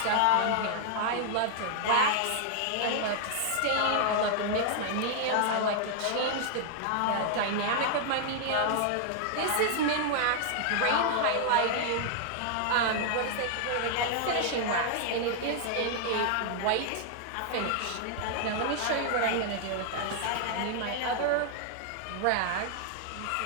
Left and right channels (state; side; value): different; both; correlation 0.00